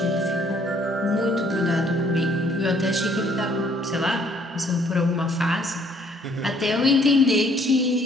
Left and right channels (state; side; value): normal; both; correlation 0.62